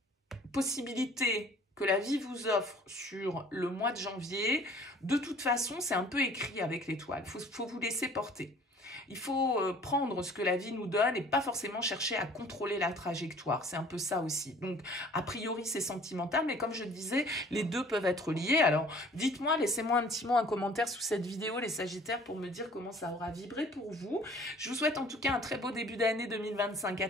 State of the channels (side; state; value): both; normal; correlation 0.52